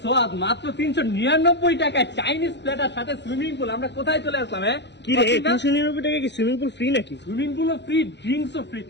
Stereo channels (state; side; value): late; right; 0.51 ms